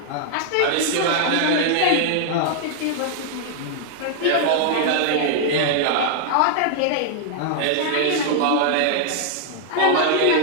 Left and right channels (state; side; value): different; both; correlation -0.01